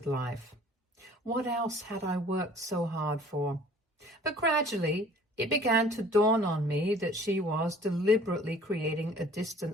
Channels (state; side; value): normal; both; correlation 0.51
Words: life. What else had I worked so hard for? But gradually, it began to dawn on me that she was deliberately creating a